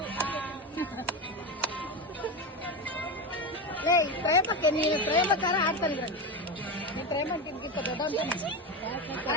ಪ್ರೇಮಕ್ಕೆ ನೀನು ಪ್ರೇಮಕಾರ ಆಡ್ತಾನೆ ನೀ ಪ್ರೇಮ ತಿನ್ಗಿಂತ ದೊಡ್ಡ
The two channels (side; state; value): both; normal; correlation 0.18